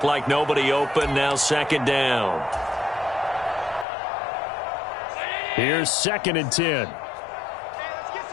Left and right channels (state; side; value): drops out; right; at 3.9 s